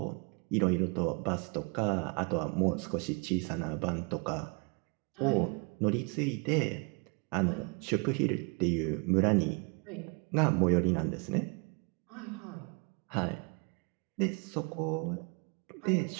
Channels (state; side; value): quieter; left; 32.9 dB